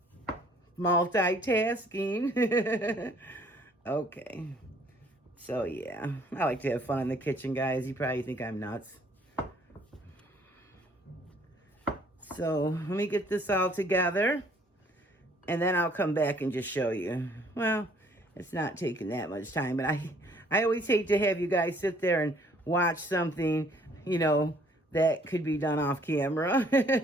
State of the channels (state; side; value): normal; both; correlation 0.60